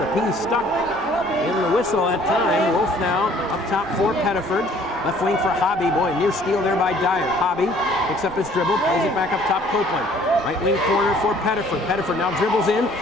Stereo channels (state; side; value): normal; both; correlation 0.57